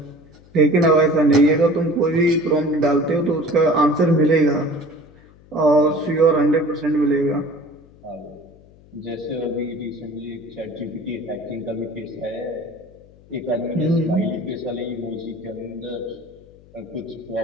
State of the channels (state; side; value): noise; left; hum, 25 dB below the sound